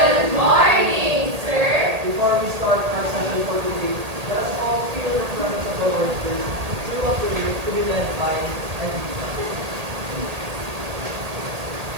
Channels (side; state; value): left; late; 1.8 ms